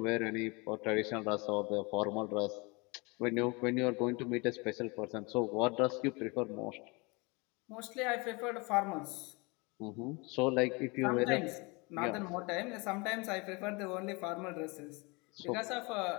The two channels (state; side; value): quieter; right; 27.8 dB